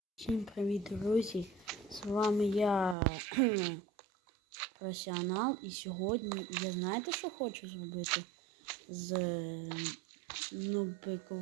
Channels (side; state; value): left; drops out; at 3.0 s